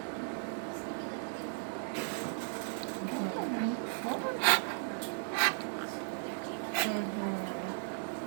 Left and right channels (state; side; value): silent; left; 54 dB below the other